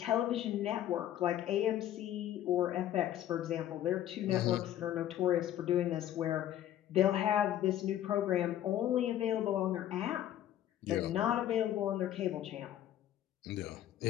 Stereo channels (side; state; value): right; quieter; 12.0 dB